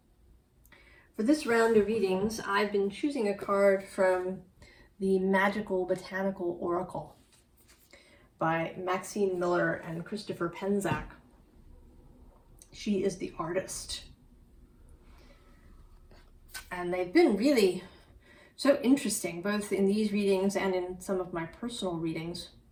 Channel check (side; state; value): both; identical; correlation 1.00